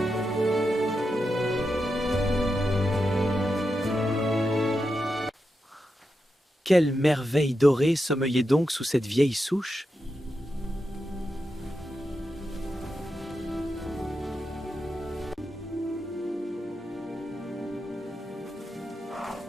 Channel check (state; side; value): normal; both; correlation 0.88